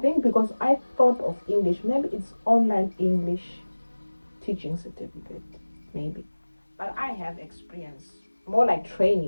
because I thought of English, maybe it's online English teaching certificate, maybe. But I have experience, more like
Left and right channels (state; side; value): inverted; both; correlation -1.00